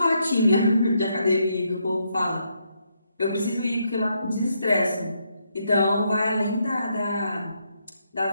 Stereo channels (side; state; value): both; inverted; correlation -0.77